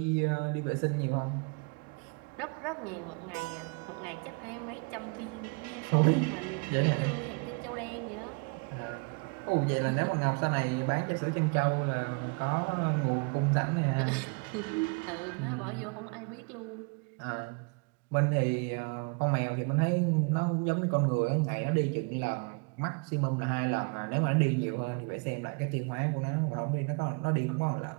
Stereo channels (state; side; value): quieter; left; 32.4 dB